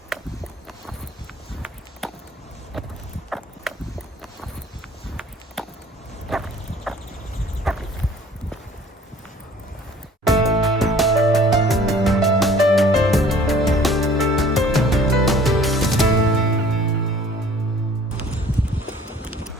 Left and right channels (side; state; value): both; normal; correlation 0.52